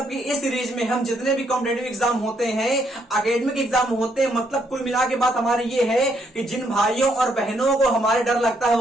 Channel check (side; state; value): both; normal; correlation 0.73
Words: कि इस सीरीज में हम जितने भी कॉम्पिटेटिव एग्जाम होते हैं, एकेडमिक एग्जाम होते हैं, मतलब कुल मिला के बात हमारी ये है कि जिन भाइयों और बहनों को हमारे डर लगता है